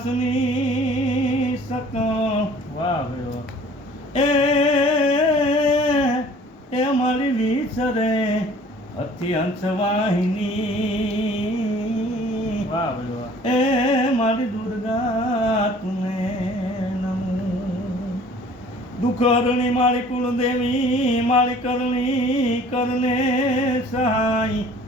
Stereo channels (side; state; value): both; normal; correlation 0.51